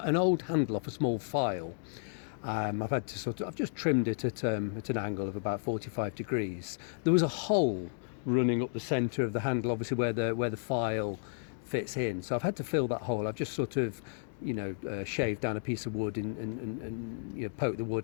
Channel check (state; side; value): silent; right; digital silence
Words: old handle off a small file. I've had to I've just trimmed it at an angle of about 45 degrees. There was a hole running up the centre of the handle, obviously where the file fits in. So I've had to fill that hole. I've just sort of, shaved down a piece of wood and poked the